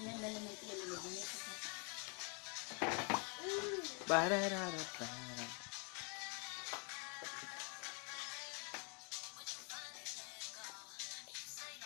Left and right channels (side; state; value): right; quieter; 34.9 dB